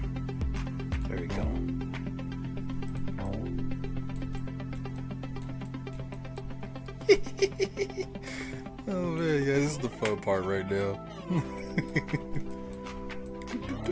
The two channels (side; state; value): both; identical; correlation 1.00